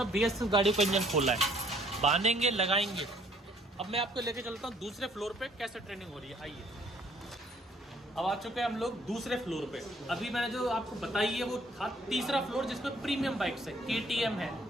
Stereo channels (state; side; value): normal; both; correlation 0.61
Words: BS6 गाड़ी को इंजन खोला है। बांधेंगे, लगाएंगे। अब मैं आपको लेके चलता हूँ दूसरे फ्लोर पे कैसे ट्रेनिंग हो रही है। आइए, अब आ चुके हैं हम लोग दूसरे फ्लोर पे। अभी मैंने जो आपको बताई है वो था तीसरा फ्लोर, जिसमें प्रीमियम बाइक्स है, KTM है,